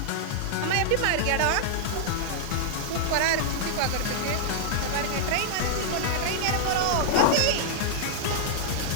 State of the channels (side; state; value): both; different; correlation -0.01